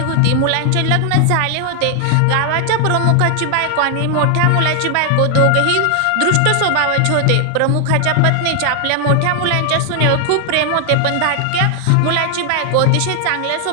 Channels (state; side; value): different; both; correlation 0.00